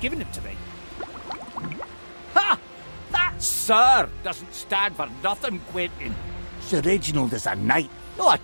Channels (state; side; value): inverted; both; correlation -1.00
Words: them to me? Ha! That "sir" doesn't stand for nothing, Quentin. Sir Reginald is a knight, not